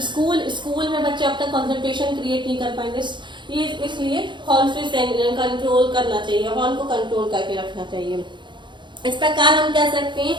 स्कूल में बच्चे अब तक कंसंट्रेशन क्रिएट नहीं कर पाएंगे, ये इसलिए हॉर्न फ्री कंट्रोल करना चाहिए, हॉर्न को कंट्रोल करके रखना चाहिए। इस प्रकार हम कह सकते हैं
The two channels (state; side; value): late; left; 0.23 ms